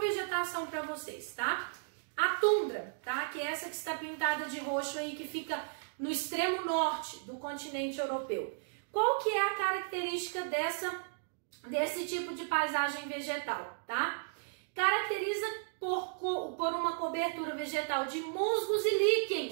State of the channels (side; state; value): left; silent; digital silence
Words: para vocês, tá? A tundra, tá? Que é essa que está pintada de roxo aí, que fica no extremo norte do continente europeu. Qual que é a característica desse tipo de paisagem vegetal, tá? Caracteriza por uma cobertura vegetal de musgos e